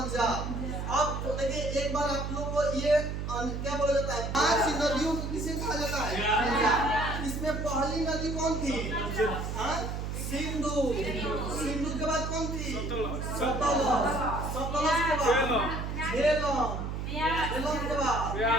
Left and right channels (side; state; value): right; noise; hum, 4 dB below the sound